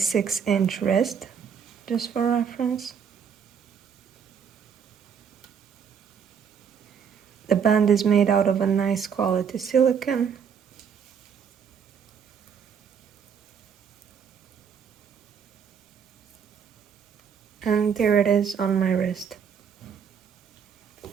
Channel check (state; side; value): quieter; left; 7.2 dB